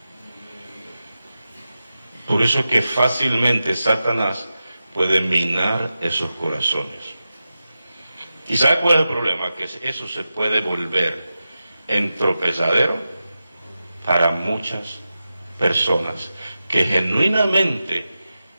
Por eso es que fácilmente Satanás puede minar esos corazones. ¿Y sabe cuál es el problema? Que eso se puede volver en tropezadero para muchas personas que genuinamente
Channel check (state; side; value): inverted; both; correlation -0.92